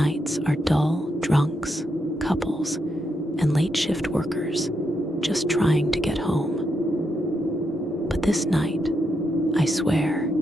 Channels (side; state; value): both; normal; correlation 0.82